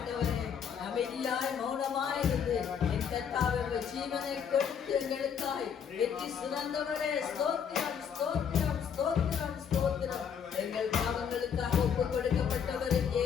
அமைதியாய் மௌனமாய் இருந்து என் கர்த்தாவே ஜீவனை கொடுத்து எங்களுக்காய் வெற்றி சுரந்தவரே ஸ்தோத்திரம் ஸ்தோத்திரம் ஸ்தோத்திரம் ஸ்தோத்திரம். எங்கள் பாவங்களுக்காக ஒப்பு கொடுக்கப்பட்டவர்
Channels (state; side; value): quieter; right; 7.5 dB